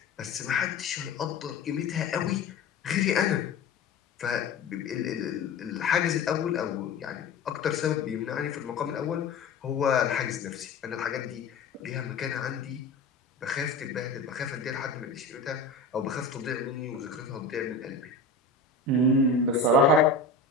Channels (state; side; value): quieter; right; 3.8 dB